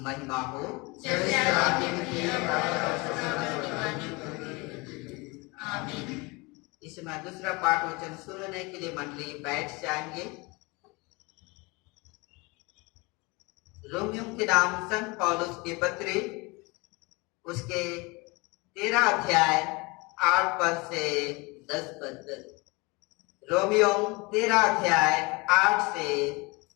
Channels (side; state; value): right; quieter; 26.2 dB